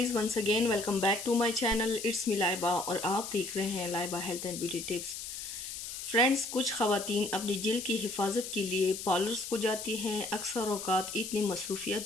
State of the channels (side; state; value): left; noise; hiss, 7 dB below the sound